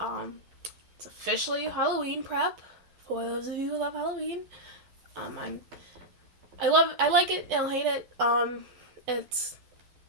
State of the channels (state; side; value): late; left; 11 ms